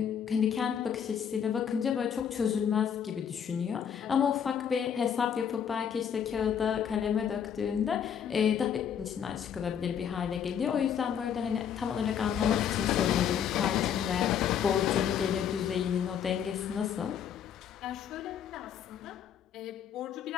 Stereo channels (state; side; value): quieter; right; 8.3 dB